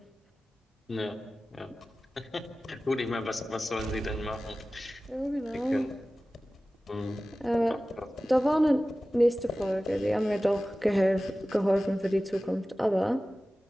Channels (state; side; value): normal; both; correlation 0.96